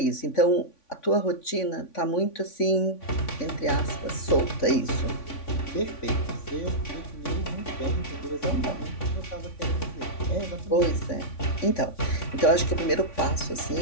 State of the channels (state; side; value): late; right; 3.5 ms